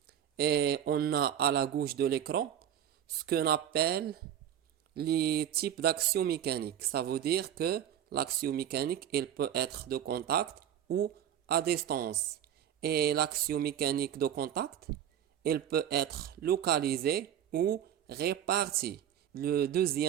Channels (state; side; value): quieter; left; 10.1 dB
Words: Et on a à la gauche de l'écran ce qu'on appelle les types d'actions mécaniques. Ça veut dire que l'action mécanique, elle peut être de contact ou à distance. Et l'action mécanique de contact, elle peut être localisée ou répartie. Le